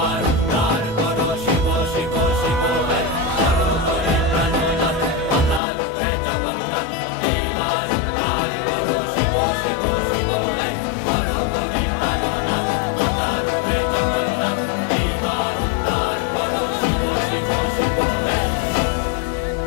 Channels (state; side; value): drops out; right; at 5.6 s